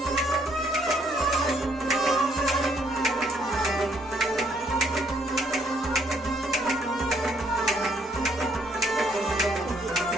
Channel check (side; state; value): both; normal; correlation 0.68